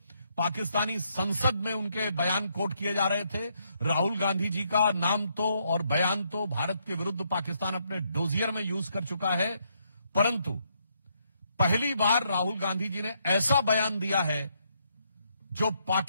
पाकिस्तानी संसद में उनके बयान कोट किए जा रहे थे। राहुल गांधी जी का नाम तो और बयान तो भारत के विरुद्ध पाकिस्तान अपने डोजियर में यूज कर चुका है, परंतु पहली बार राहुल गांधी जी ने ऐसा बयान दिया है जो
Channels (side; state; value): both; inverted; correlation -0.75